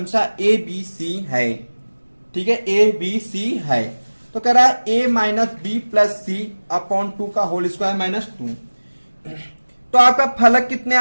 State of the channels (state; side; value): inverted; both; correlation -1.00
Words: a b c है, ठीक है, a b c है, तो कह रहा है a - b + c अपॉन 2 का होल स्क्वायर -2। तो आपका फलक कितने,